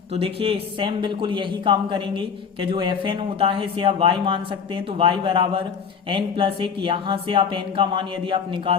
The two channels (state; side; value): quieter; right; 6.5 dB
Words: तो देखिए सेम बिल्कुल यही काम करेंगे कि जो fn होता है इसे आप y मान सकते हैं। तो y बराबर n+1, यहाँ से आप n का मान यदि आप